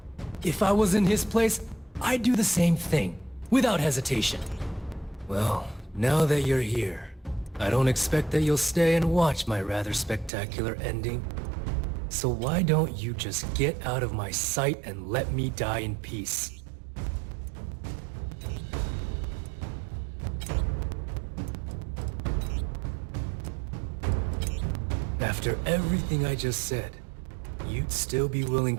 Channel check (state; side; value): drops out; left; at 10.3 s